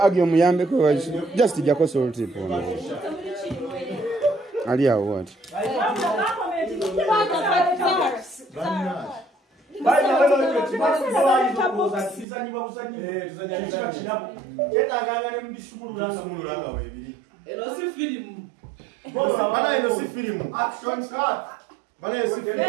agyo muyambe ko just jako salt ipo. Ali awo what? Action start. Bana si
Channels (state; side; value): drops out; left; at 12.2 s